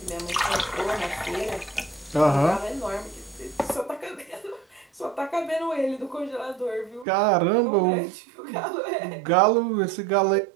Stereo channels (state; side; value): drops out; left; at 7.1 s